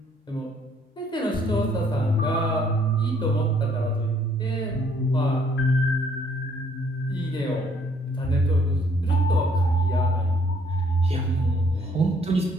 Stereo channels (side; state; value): both; normal; correlation 0.65